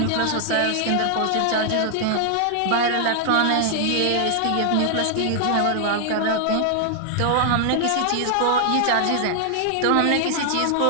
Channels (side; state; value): both; different; correlation 0.00